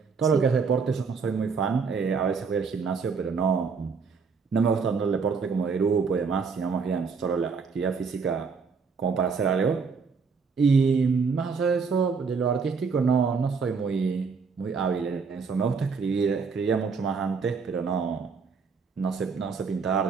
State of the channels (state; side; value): quieter; left; 5.3 dB